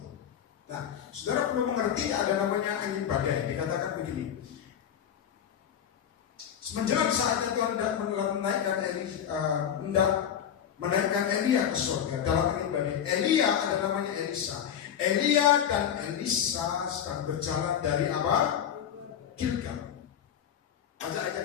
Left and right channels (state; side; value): quieter; right; 9.1 dB